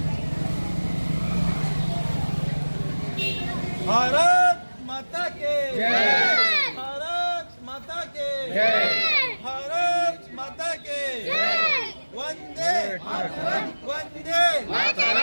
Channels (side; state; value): both; inverted; correlation -1.00